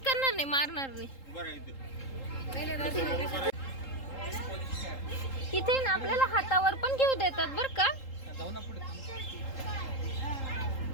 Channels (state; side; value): late; right; 3.8 ms